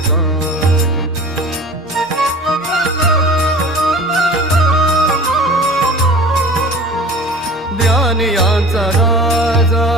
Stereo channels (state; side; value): normal; both; correlation 0.41